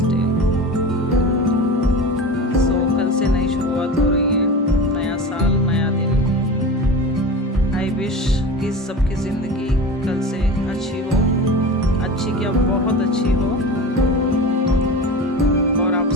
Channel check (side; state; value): both; normal; correlation 0.31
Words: डे। कल से नई शुरुआत हो रही है, नया साल नया दिन। आई विश कि सबकी ज़िंदगी कल से अच्छी हो, अच्छी क्या बहुत अच्छी हो, और आप